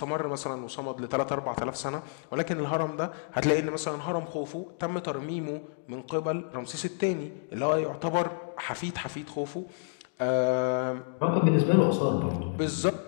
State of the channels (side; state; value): right; silent; digital silence